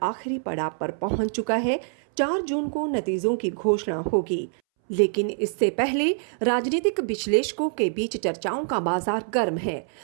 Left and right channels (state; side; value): silent; left; 62 dB below the other